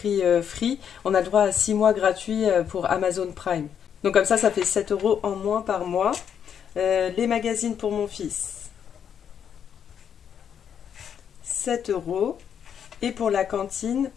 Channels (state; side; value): quieter; right; 8.2 dB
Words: Free, on a le droit à 6 mois gratuits pour Amazon Prime. Donc comme ça fait 7 euros en moins par mois. Les magazines pour mon fils, 7 euros. Et pour la cantine,